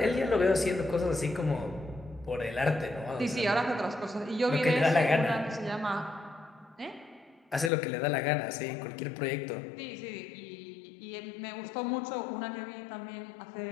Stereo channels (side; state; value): right; drops out; at 7.7 s